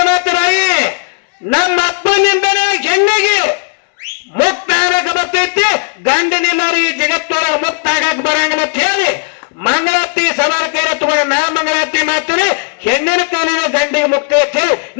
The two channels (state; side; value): quieter; right; 38.3 dB